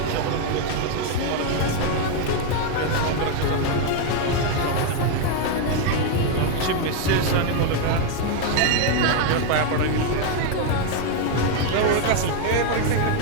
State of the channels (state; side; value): different; both; correlation 0.01